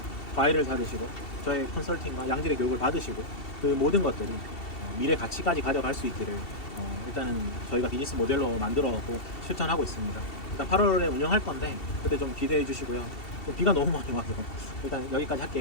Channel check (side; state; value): right; late; 2.7 ms